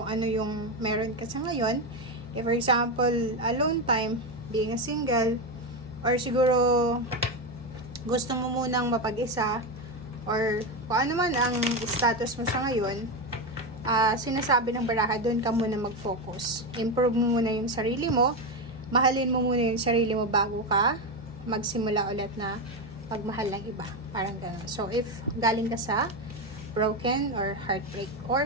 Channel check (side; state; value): right; noise; hum, 24 dB below the sound